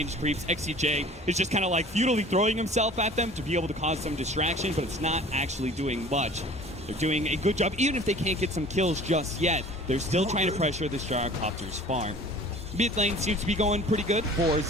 creeps. XCJ is just kind of like futilely throwing himself at them to be able to cause some distraction, but it's not actually doing much. They're doing a good job, even if they can't get some kills just yet. They're still trying to pressure this Gyrocopter's farm. Mid lane seems to be going pretty good for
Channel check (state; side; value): normal; both; correlation 0.46